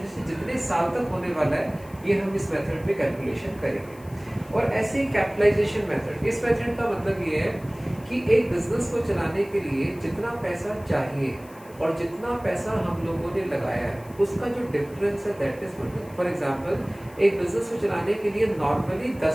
से जितने साल तक होने वाला है, ये हम इस मेथड में कैलकुलेशन करेंगे। और ऐसे ही कैपिटलाइजेशन मेथड, इस मेथड का मतलब ये है कि एक बिजनेस को चलाने के लिए जितना पैसा चाहिए और जितना पैसा हम लोगों ने लगाया है उसका जो डिफरेंस है that is goodwill. For example, एक बिजनेस को चलाने के लिए नॉर्मली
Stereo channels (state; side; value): noise; left; hiss, 25 dB below the sound